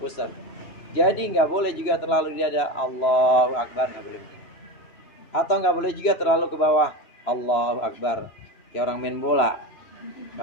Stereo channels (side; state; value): right; late; 3.0 ms